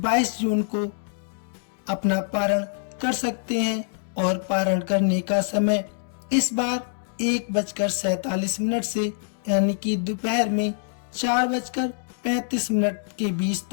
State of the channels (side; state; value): right; silent; digital silence